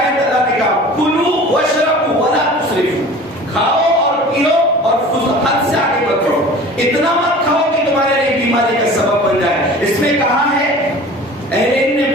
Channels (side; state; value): both; normal; correlation 0.42